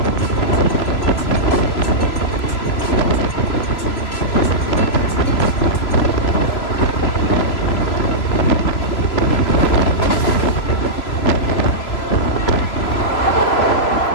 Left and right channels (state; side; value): late; right; 3.0 ms